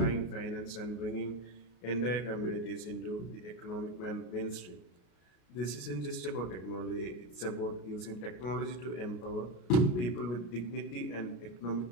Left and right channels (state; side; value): late; right; 33 ms